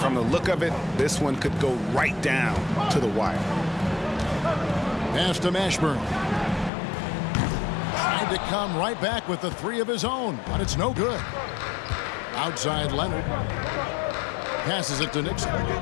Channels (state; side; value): drops out; right; at 6.7 s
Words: the look of it, this one could go right down to the wire. Pass to Mashburn. Tried to come right back with the 3 of his own, but it's no good. Outside Leonard. Passes it to Nixon.